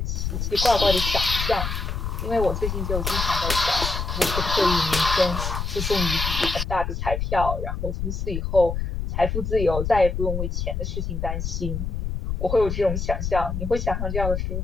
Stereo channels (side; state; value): left; noise; rumble, 3 dB below the sound